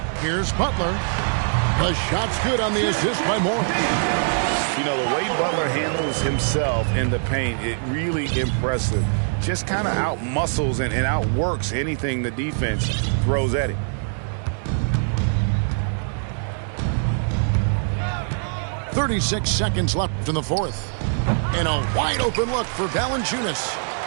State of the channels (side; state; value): left; silent; digital silence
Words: Here's Butler. The shot's good on the assist by Morris. You know, the way Butler handles himself in the paint, it really impressive. Just kind of out-muscles and outworks anything the defense throws at him. .36 seconds left in the fourth. And a wide-open look for Valanciunas.